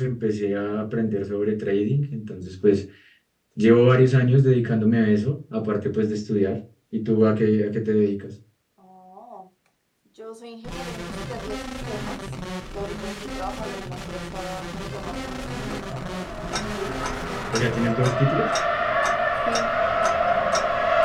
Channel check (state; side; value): identical; both; correlation 1.00